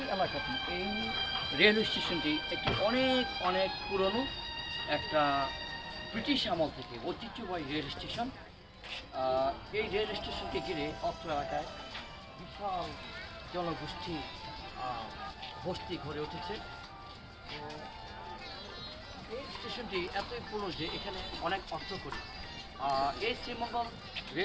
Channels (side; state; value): both; identical; correlation 1.00